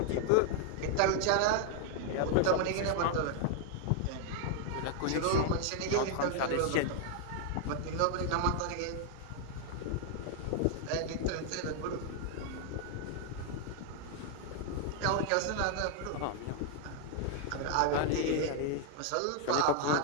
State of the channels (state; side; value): different; both; correlation 0.00